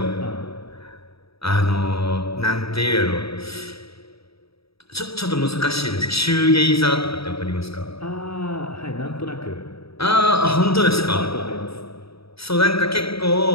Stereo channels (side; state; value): right; late; 0.77 ms